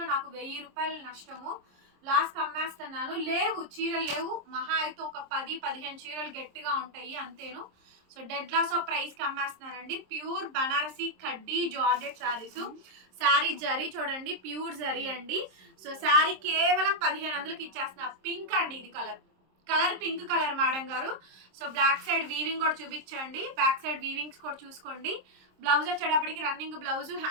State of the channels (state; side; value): late; left; 26 ms